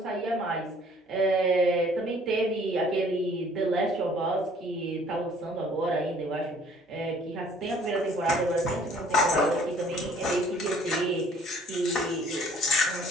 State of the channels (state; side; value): normal; both; correlation 0.56